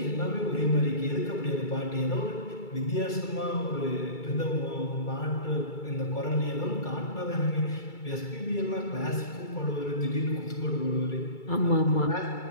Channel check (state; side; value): late; right; 2.3 ms